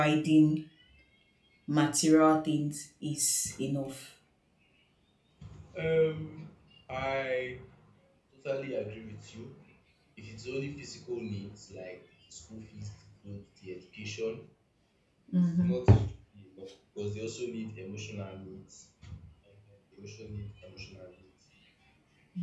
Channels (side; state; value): both; identical; correlation 1.00